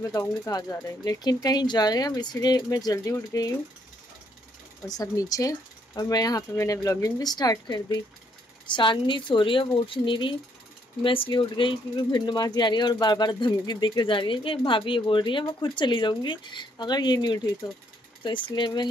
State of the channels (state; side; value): normal; both; correlation 0.70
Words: बताऊँगी कहाँ जा रहे हैं, लेकिन कहीं जा रहे हैं हम, इसलिए मैं जल्दी उठ गई हूँ और सब नीचे। और मैं यहाँ पे मैंने व्लॉगिंग भी स्टार्ट कर दी। चांदनी सो रही है, वो उठ नहीं रही। मैं इसलिए उठ गई क्योंकि भिंड मासी आ रही है और बार बार धमकी देके जा रही है कि भाभी ये बोल रही है मैं खुद चली जाऊंगी अगर ये नहीं उठी तो इसलिए मैं